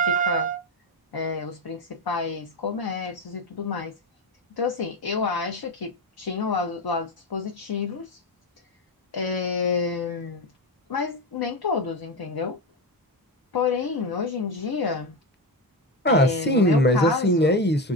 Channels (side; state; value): both; normal; correlation 0.15